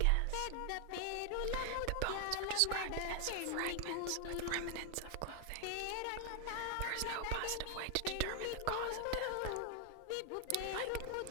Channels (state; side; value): different; both; correlation 0.00